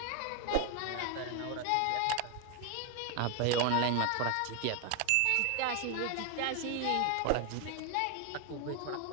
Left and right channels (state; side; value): different; both; correlation 0.01